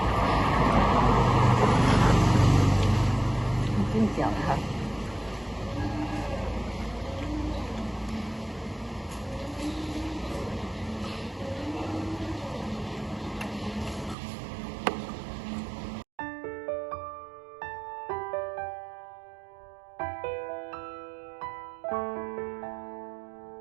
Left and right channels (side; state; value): left; drops out; at 14.2 s